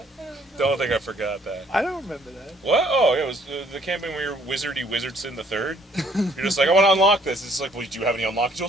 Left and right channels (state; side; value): normal; both; correlation 0.63